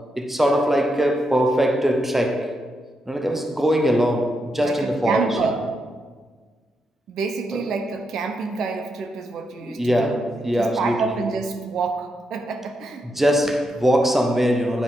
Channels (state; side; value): normal; both; correlation 0.83